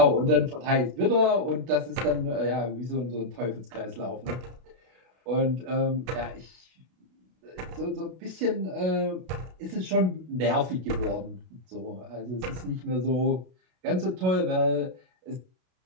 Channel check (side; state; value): left; late; 32 ms